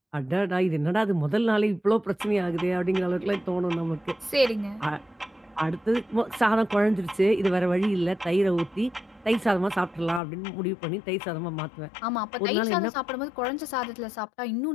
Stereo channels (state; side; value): drops out; right; at 10.2 s